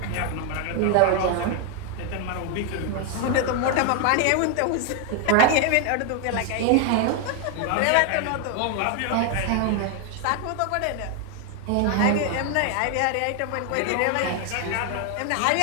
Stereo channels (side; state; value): both; different; correlation 0.01